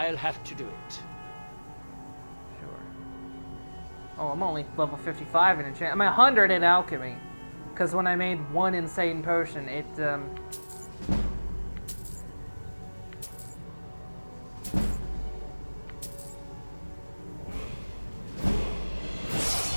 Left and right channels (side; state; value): both; inverted; correlation -1.00